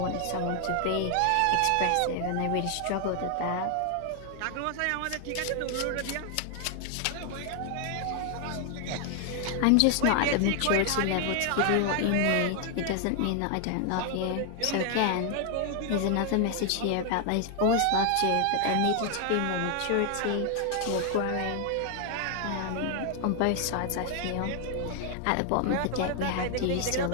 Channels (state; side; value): different; both; correlation 0.00